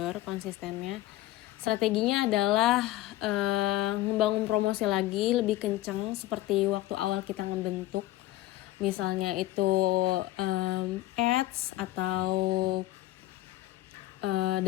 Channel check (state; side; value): quieter; right; 16.2 dB